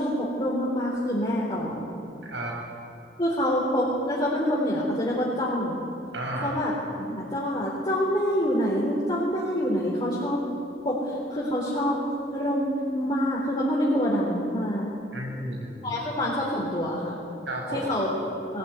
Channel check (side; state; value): both; normal; correlation 0.55